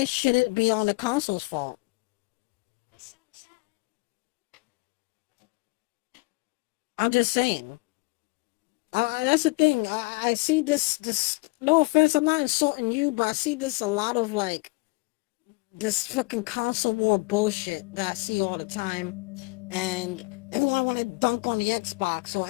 should it be on the console's fault? I'm just saying. That's the thing. I see this. No offense, I'm not insulting you, but I see this a lot of like this fucking console war bullshit that I see all the time, and everyone want to dunk on the Xbox, or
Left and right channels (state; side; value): quieter; right; 26.5 dB